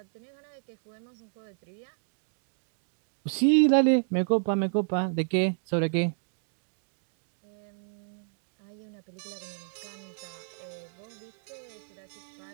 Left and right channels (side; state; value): left; silent; digital silence